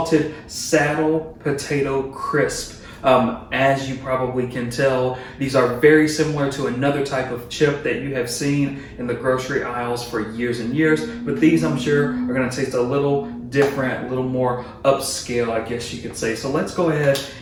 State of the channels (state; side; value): identical; both; correlation 1.00